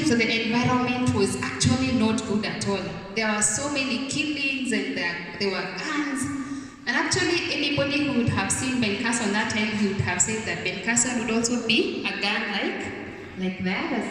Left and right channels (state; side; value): identical; both; correlation 1.00